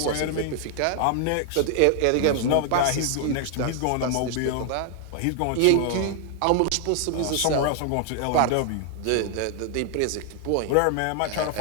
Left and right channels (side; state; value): both; different; correlation 0.00